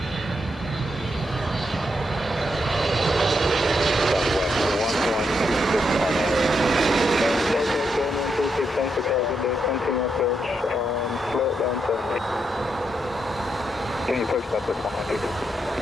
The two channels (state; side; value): normal; both; correlation 0.81